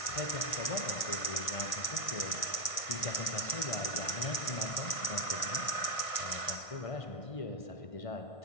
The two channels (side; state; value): right; late; 1.6 ms